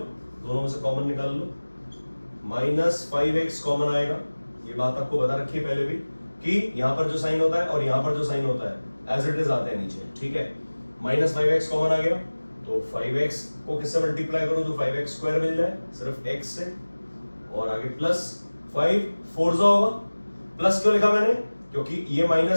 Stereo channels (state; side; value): inverted; both; correlation -1.00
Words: दोनों में से कॉमन निकाल लो। -5x कॉमन आएगा, ये बात आपको बता रखी है पहले भी कि यहां पर जो साइन होता है और यहां पर जो साइन होता है एज इट इज आते हैं नीचे। ठीक है, -5x कॉमन आ गया, तो 5x को किससे मल्टीप्लाई करूं तो 5x² मिल जाए, सिर्फ x से, और आगे +5 4 होगा। प्लस क्यों लिखा मैंने? क्योंकि ये